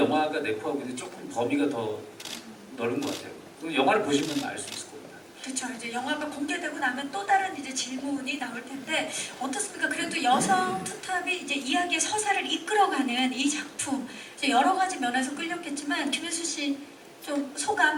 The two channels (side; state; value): both; identical; correlation 1.00